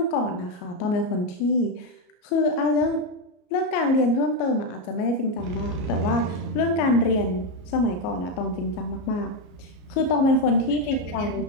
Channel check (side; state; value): right; late; 33 ms